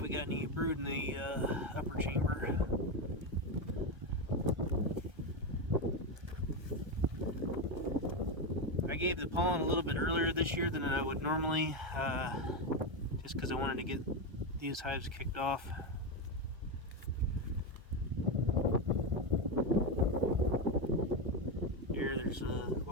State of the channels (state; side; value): late; left; 1.3 ms